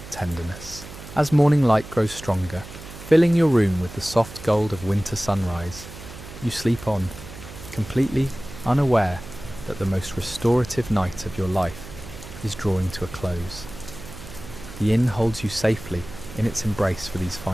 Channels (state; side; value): noise; right; hum, 14 dB below the sound